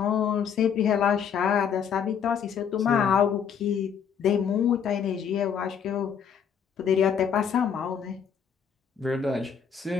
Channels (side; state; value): right; quieter; 7.5 dB